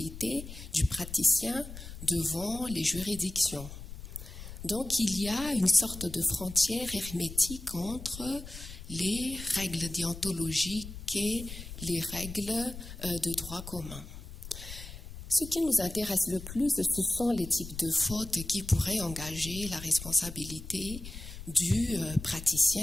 du praticien devant les juridictions. Donc il y a une sorte de frontière hermétique entre les règles déontologiques et les règles de droit commun. Ce qui nous intéresse le plus, ce sont les types de fautes qui pourraient engager la responsabilité du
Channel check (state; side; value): noise; left; rumble, 12 dB below the sound